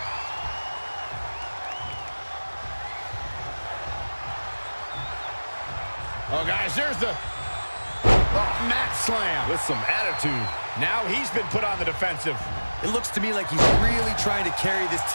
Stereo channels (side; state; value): both; inverted; correlation -1.00